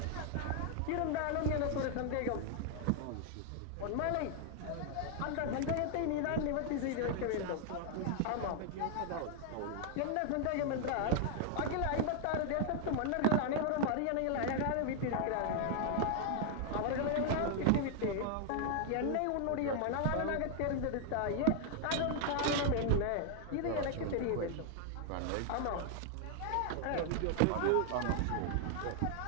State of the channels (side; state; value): both; different; correlation 0.00